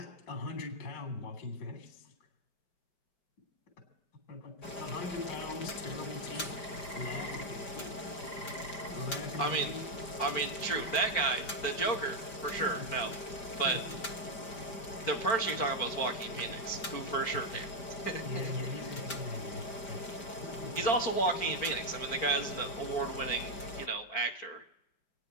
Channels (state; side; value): late; right; 5.0 ms